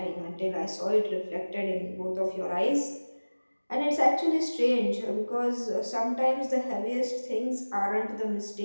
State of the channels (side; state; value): both; inverted; correlation -1.00